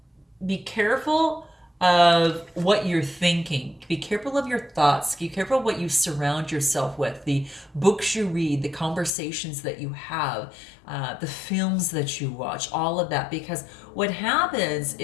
be careful of what you're thinking. Be careful of your thoughts. Be careful of what you surround yourself with, the books you read, the conversations that you have, the films that you watch, all of that. Because what happens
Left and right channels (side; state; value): right; drops out; at 9.1 s